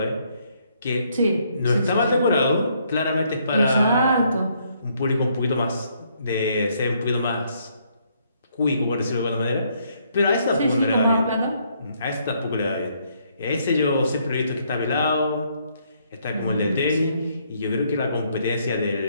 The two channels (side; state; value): both; inverted; correlation -0.70